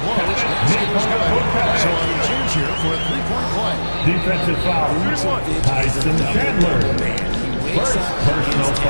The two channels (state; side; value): inverted; both; correlation -1.00